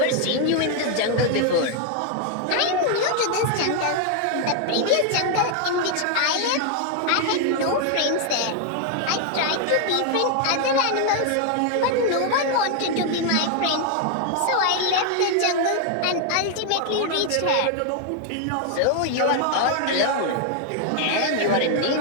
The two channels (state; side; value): different; both; correlation 0.00